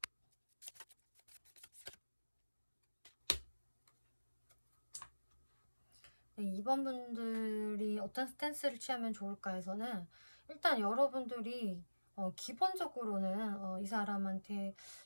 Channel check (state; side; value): inverted; both; correlation -1.00